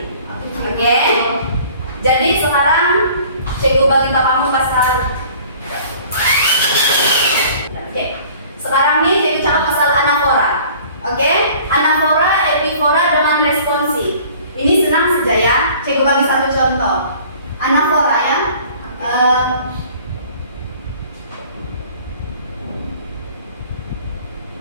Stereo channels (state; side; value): inverted; both; correlation -0.50